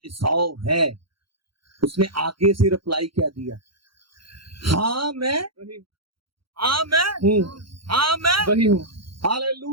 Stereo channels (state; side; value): late; left; 0.73 ms